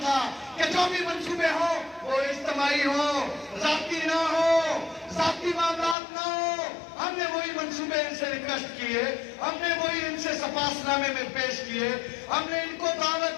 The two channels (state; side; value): drops out; right; at 6.0 s